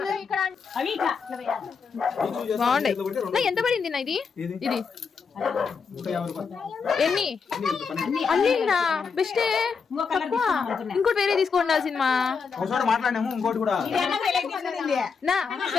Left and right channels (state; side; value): quieter; right; 5.6 dB